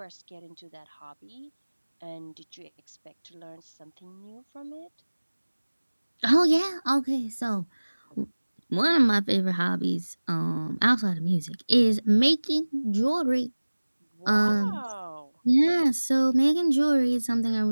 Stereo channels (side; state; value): both; inverted; correlation -1.00